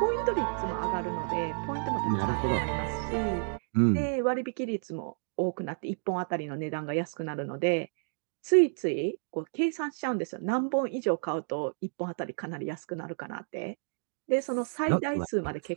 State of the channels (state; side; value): silent; left; digital silence